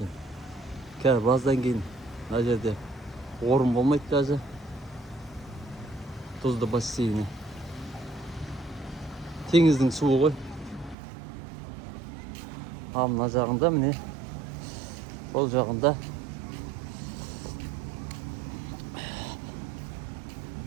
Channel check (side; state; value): left; drops out; at 11.0 s